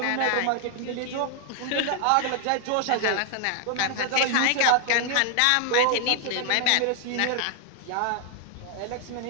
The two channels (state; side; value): different; both; correlation 0.00